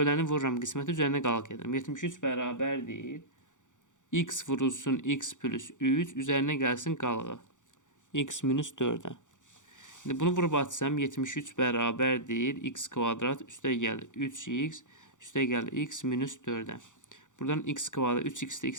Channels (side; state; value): right; late; 0.86 ms